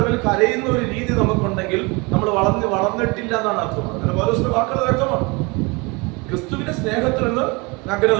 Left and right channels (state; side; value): quieter; left; 27.2 dB